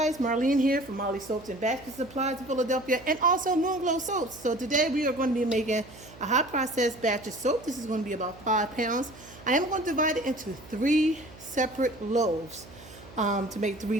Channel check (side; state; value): right; noise; hum, 20 dB below the sound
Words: Marlene here from Moonglows Soaps and Basket Supplies in Philadelphia, and also Moonglows Soaps. So today we are going to be making a hot processed batch of soap. This is going to be about 5 pounds. I am going to divide it into 3 separate loaves to make 3